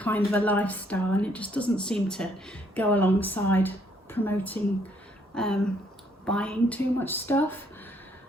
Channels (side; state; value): both; normal; correlation 0.68